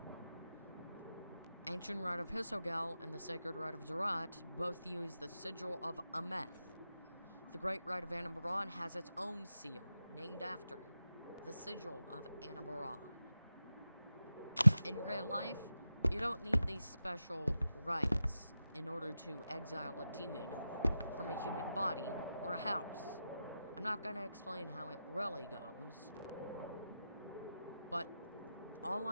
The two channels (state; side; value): inverted; both; correlation -0.90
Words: Ancient Rite of Hisogel and the Sacred Rite of Zerat both use the sigil of Ameth. The Great Rite of Anabaron has its own seal, named after it, the sigil of Anabaron. In real life, you don't need these special rites in order to exile a demon from a human body or a house. I'm not going to explain how it really goes, but all